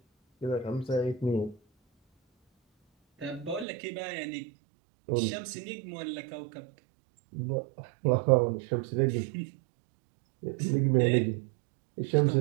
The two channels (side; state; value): left; drops out; at 3.7 s